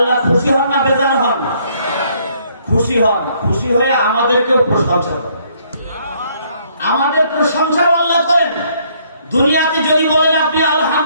খুশি হন না বেজার হন? খুশি হন। খুশি হয়ে আমাদেরকেও প্রশংসা করেন, আমাদের প্রশংসাও আল্লাহ করেন। দুনিয়াতে যদি বলেন আপনি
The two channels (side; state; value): both; inverted; correlation -0.66